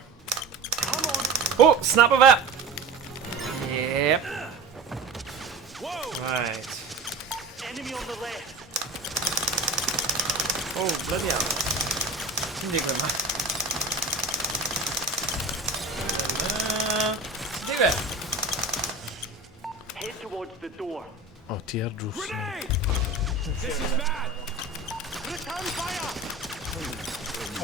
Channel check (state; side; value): quieter; left; 3.5 dB